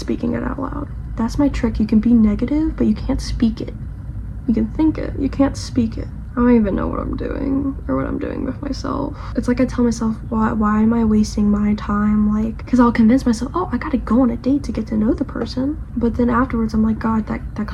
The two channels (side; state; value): both; identical; correlation 1.00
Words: it out loud. That's my trick. You can be negative, but you can't speak it. You can think it, you can't speak it. I don't even know what I'm doing or what I'm doing with myself. It's like I tell myself, why am I wasting my time? Like, because I'll convince myself, oh, I gotta go on a date to get to know the person. But then afterwards, I'm like, God, that